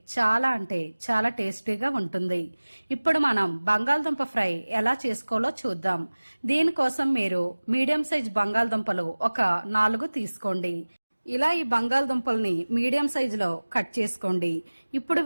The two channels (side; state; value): both; inverted; correlation -1.00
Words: చాలా అంటే చాలా టేస్టీగా ఉంటుంది. ఇప్పుడు మనం బంగాళదుంప ఫ్రై ఎలా చేసుకోవాలో చూద్దాం. దీనికోసం మీరు మీడియం సైజ్ బంగాళదుంపలు ఒక 4 తీసుకోండి. ఇలా ఈ బంగాళదుంపల్ని మీడియం సైజులో కట్ చేసుకోండి. ఇప్పుడు